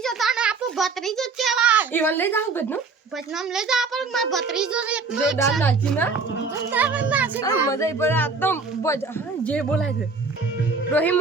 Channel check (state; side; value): quieter; left; 4.4 dB